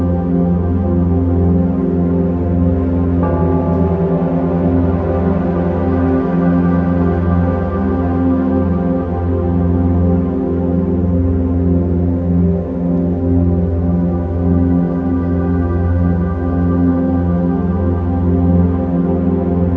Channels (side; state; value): left; noise; hum, 25 dB below the sound